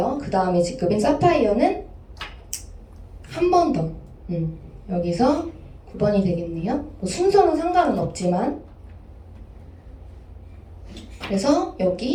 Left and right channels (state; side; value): identical; both; correlation 1.00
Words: 그 다음에 직급인 사파이어는 한 번 더. 여기서 9번이 되겠네요. 뭐 순서는 상관은 없지만 그래서